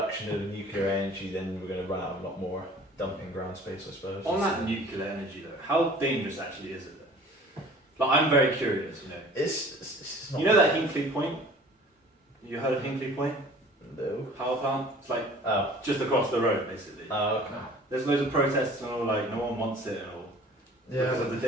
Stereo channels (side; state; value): both; normal; correlation 0.48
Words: of nuclear energy, then we're going to run out of a lot more dumping ground space, I suppose. On that nuclear energy though, how dangerous actually is it though? Like I'm very curious, It's not. You know that Hinkley Point? You heard of Hinkley Point? No. Power plant? It's like Oh. just across the road basically. Oh, okay. There's loads of protests and all, like no one wants it and all. Yeah. Because of the